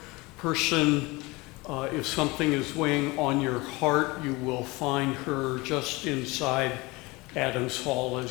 person. If something is weighing on your heart, you will find her just inside Adams Hall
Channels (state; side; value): quieter; right; 23.5 dB